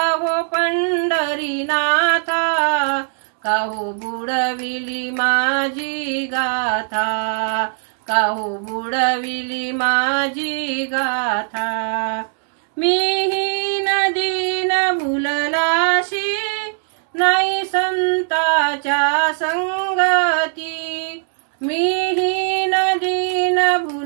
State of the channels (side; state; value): left; silent; digital silence